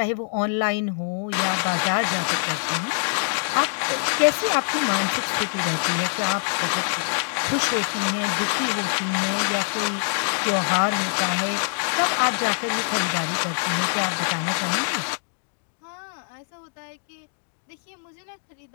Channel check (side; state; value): right; silent; digital silence